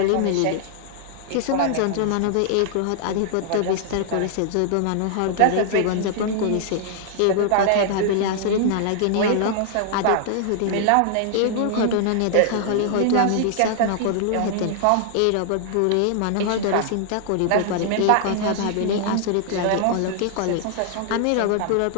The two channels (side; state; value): both; different; correlation -0.01